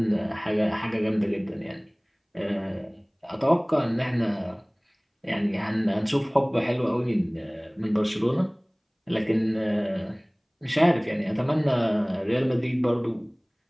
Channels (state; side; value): identical; both; correlation 1.00